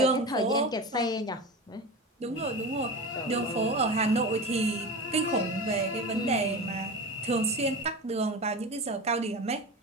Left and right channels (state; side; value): normal; both; correlation 0.27